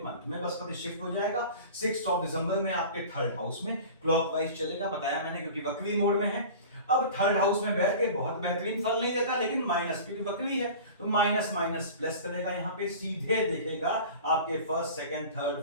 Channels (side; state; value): both; inverted; correlation -0.38